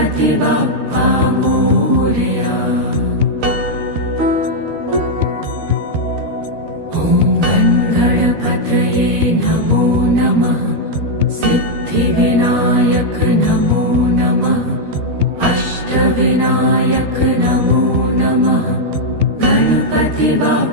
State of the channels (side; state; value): left; late; 13 ms